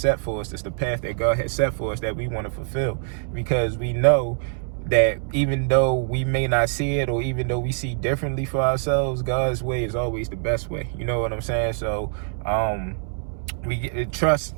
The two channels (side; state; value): left; silent; 62 dB below the other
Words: for us. It's the path that God has set for us that we want to fulfill, because we know that even though we may not see it, or even though we see differently for ourselves, God's way is always the best way. You know what I'm saying? So